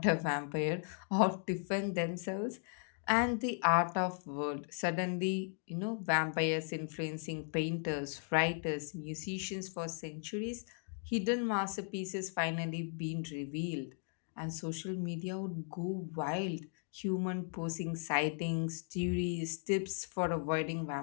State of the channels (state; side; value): silent; right; 53 dB below the other